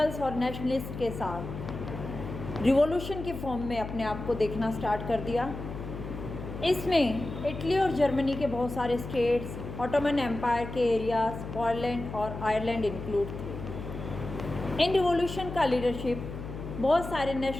और नेशनलिस्ट के साथ रिवॉल्यूशन के फॉर्म में अपने आप को देखना स्टार्ट कर दिया। इसमें इटली और जर्मनी के बहुत सारे स्टेट्स, ऑटोमन एम्पायर के एरियाज, पोलैंड और आयरलैंड इंक्लूड थे। इन रिवॉल्यूशन का लीडरशिप बहुत सारे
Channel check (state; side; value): noise; left; hum, 9 dB below the sound